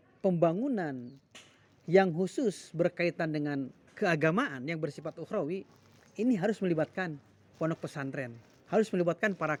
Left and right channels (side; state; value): both; identical; correlation 1.00